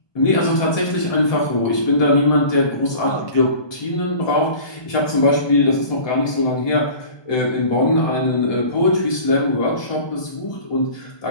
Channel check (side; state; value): right; late; 1.2 ms